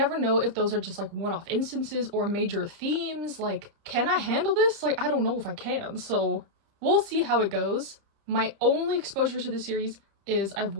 know if those are just one-off instances or major themes. Can I handle this? I don't know if I can, so we'll see how it goes. My only exposure to this series is I've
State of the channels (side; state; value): left; late; 30 ms